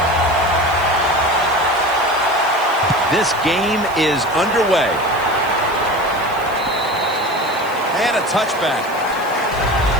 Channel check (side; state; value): right; noise; hiss, 20 dB below the sound